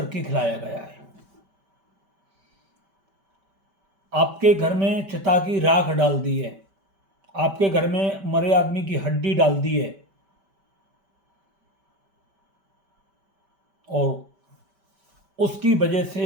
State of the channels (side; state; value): left; late; 5.1 ms